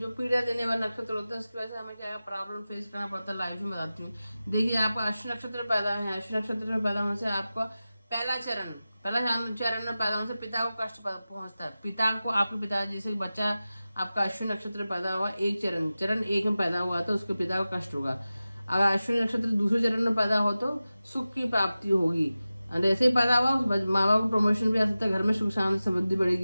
पीड़ा देने वाले नक्षत्र होते हैं उसकी वजह से हमें क्या प्रॉब्लम फेस करना पड़ता है लाइफ में, बताती हूँ। देखिए, आपका अश्विनी नक्षत्र पैदा है। अश्विनी नक्षत्र में पैदा होने से आपको पहला चरण में पैदा होने से पिता को कष्ट पहुंचता है। पिता को, आपके पिता, जैसे बच्चा आपका अश्विनी नक्षत्र में पैदा हुआ, एक चरण एक में पैदा हुआ तो उसके पिता को कष्ट होगा। अगर अश्विनी नक्षत्र दूसरे चरण में पैदा हो तो सुख की प्राप्ति होगी। और ऐसे ही पैदा हुआ माँ बाप को प्रमोशन भी आ सकता है, घर में सुख शांति समृद्धि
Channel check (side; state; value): both; inverted; correlation -0.95